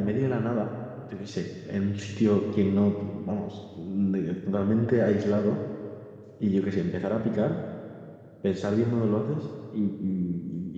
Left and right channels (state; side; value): identical; both; correlation 1.00